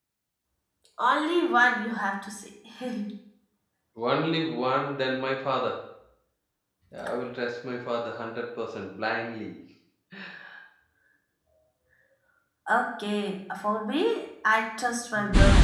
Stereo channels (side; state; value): both; identical; correlation 1.00